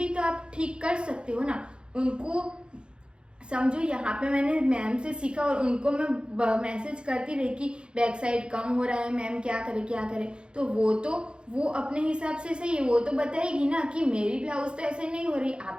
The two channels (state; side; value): late; left; 0.053 ms